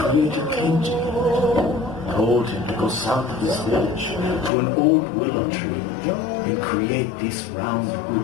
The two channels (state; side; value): drops out; right; at 4.5 s